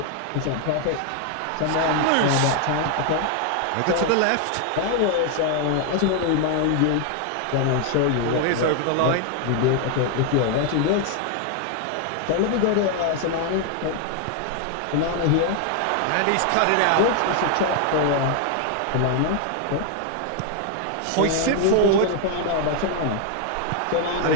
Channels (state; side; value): different; both; correlation 0.00